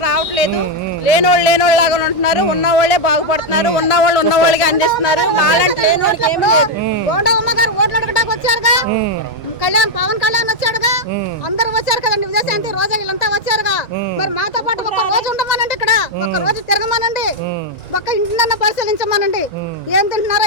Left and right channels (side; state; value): both; normal; correlation 0.01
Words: రావట్లేదు. లేనోళ్ళు లాగా ఉంటున్నారు, ఉన్నవాళ్లే బాగుపడుతున్నారు, ఉన్నవాళ్ళు ఉన్నవాళ్ళకి అందిస్తున్నారు. వాళ్ళంటే లేనోళ్ళకి ఏమి లేదు. గోండా అమ్మగారు ఓట్లు అడగడానికి వచ్చారుగా, పవన్ కళ్యాణ్ వచ్చాడుగా, అందరూ వచ్చారు కదండి. విజయశాంతి రోజా వీళ్ళంతా వచ్చారుగా. మరి మాతో పాటు ఒక రోజు ఉండమనండి, ఇక్కడ ఒక రోజు తిరగమనండి, ఒక్క ఇంటినన్నా పరిశీలించమనండి. ఏం